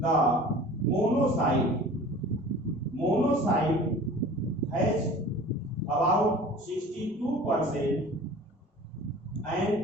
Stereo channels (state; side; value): normal; both; correlation 0.43